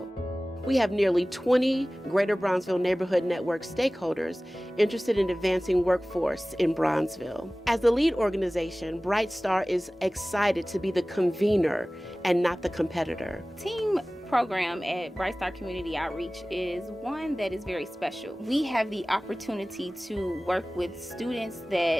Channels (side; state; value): both; normal; correlation 0.98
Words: We have nearly 20 Greater Bronzeville Neighborhood Network stakeholders interested in advancing workforce in Bronzeville. As the lead organization, Bright Star is excited to be the convener and not the competitor. Team program at Bright Star Community Outreach is one that is very special. We have the opportunity to work with students